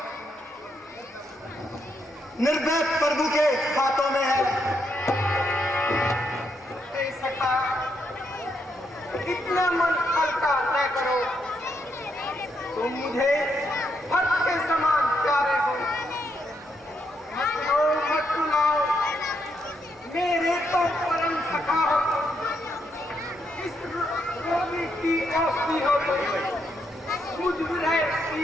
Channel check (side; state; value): both; normal; correlation 0.78